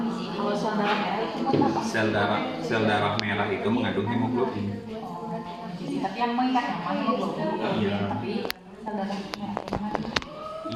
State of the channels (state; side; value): identical; both; correlation 1.00